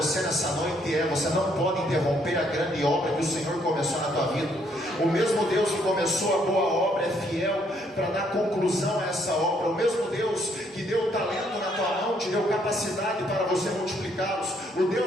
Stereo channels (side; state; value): both; normal; correlation 0.69